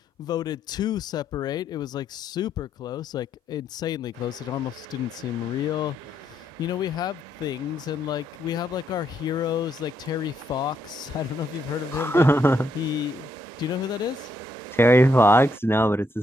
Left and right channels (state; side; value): normal; both; correlation 0.75